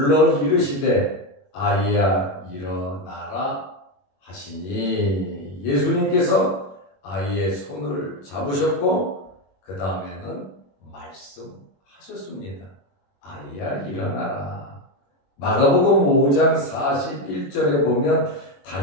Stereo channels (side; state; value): right; late; 21 ms